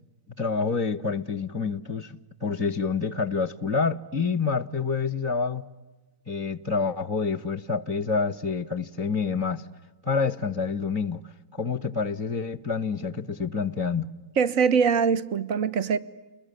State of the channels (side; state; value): left; late; 3.9 ms